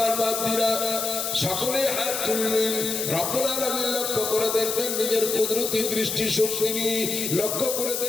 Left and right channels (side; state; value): left; noise; hiss, 2 dB below the sound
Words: বান্দিরা সকলেই হাত তুলবেন, রব্বুল আলামিন লক্ষ্য করে দেখবেন, নিজের কুদরতি দৃষ্টি শক্তি নিয়ে লক্ষ্য করে